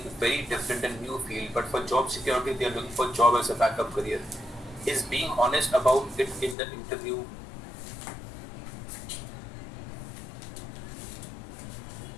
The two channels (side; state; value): right; drops out; at 6.6 s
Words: very different and new field, but for job security, they are looking for job as a backup career. Is being honest about it in the interview